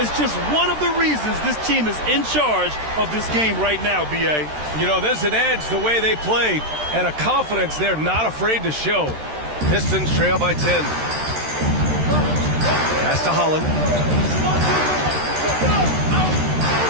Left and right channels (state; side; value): late; left; 13 ms